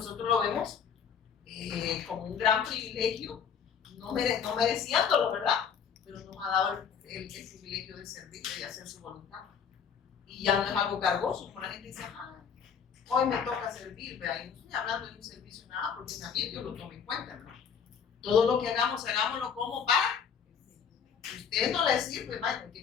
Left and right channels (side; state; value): right; quieter; 7.0 dB